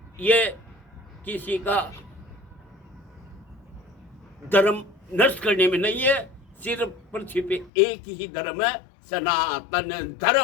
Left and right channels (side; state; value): right; drops out; at 7.7 s